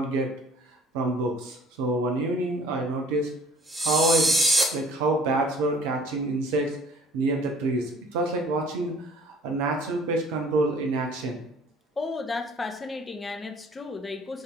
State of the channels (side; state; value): both; normal; correlation 0.53